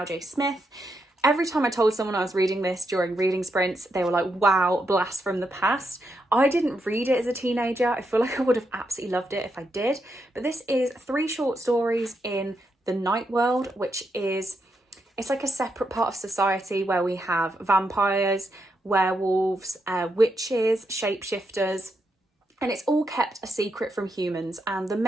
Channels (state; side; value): normal; both; correlation 0.82